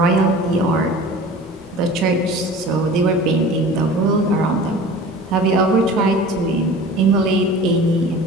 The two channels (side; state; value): both; normal; correlation 0.40